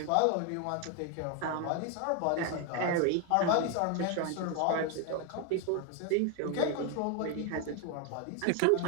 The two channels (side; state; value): both; different; correlation 0.01